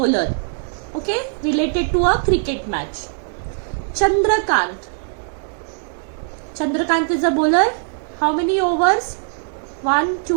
okay, related to a cricket match. Chandrakant is a bowler. How many overs? 1,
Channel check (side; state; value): left; silent; 64 dB below the other